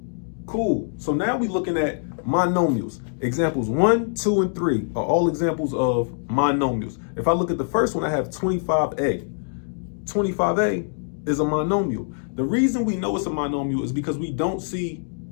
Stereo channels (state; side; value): silent; right; digital silence